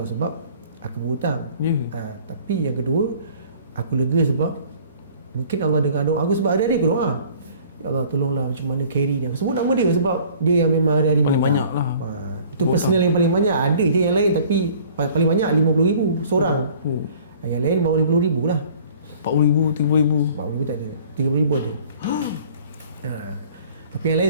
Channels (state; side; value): inverted; both; correlation -0.51